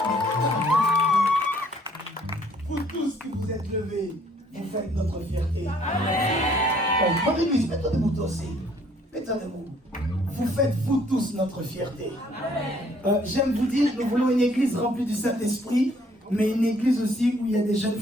Vous tous qui vous êtes levés, vous faites notre fierté. Amen. Bonne église, mets-toi debout toi aussi. Mets-toi debout. Vous faites vous tous notre fierté. J'aime vous dire, nous voulons une église remplie du Saint-Esprit, mais une église aussi où il y a des jeunes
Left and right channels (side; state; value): both; normal; correlation 0.62